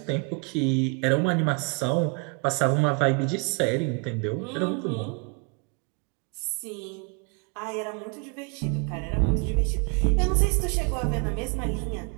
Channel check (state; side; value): quieter; left; 33.6 dB